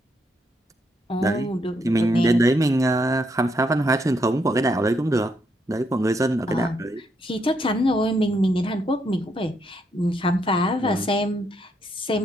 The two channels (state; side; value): normal; both; correlation 0.76